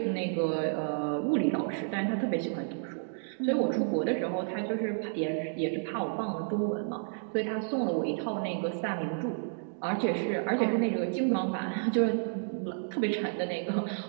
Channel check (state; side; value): silent; left; digital silence